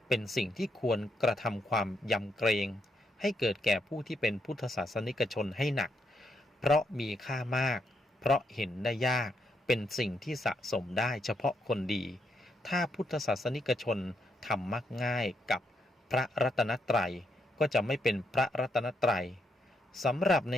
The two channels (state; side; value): normal; both; correlation 0.78